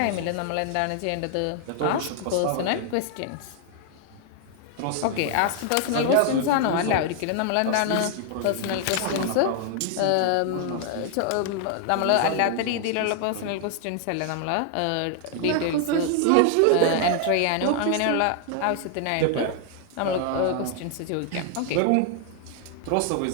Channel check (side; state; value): both; different; correlation 0.00